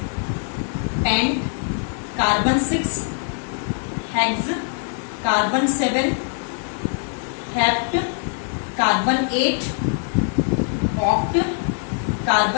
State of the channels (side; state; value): right; silent; 58 dB below the other